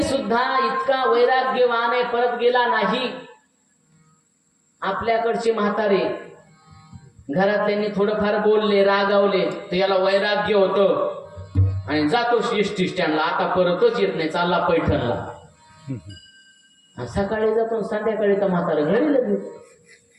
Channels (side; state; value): both; identical; correlation 1.00